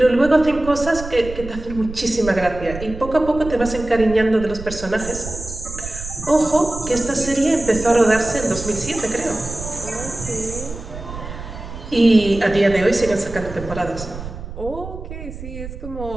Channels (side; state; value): right; noise; rumble, 11 dB below the sound